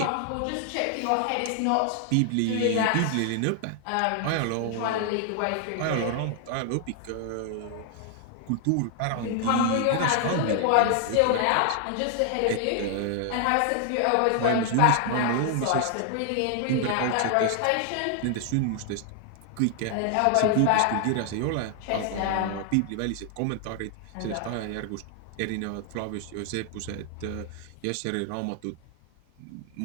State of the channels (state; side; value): different; both; correlation 0.00